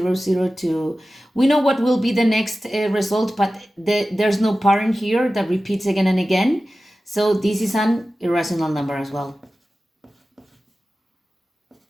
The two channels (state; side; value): normal; both; correlation 0.95